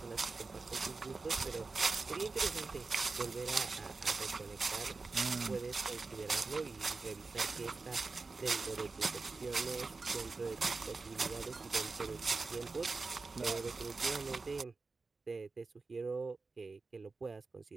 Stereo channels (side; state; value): left; quieter; 4.0 dB